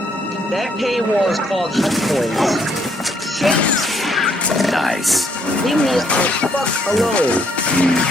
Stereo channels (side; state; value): both; normal; correlation 0.69